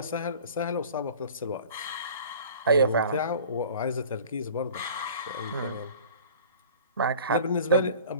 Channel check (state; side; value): inverted; both; correlation -0.44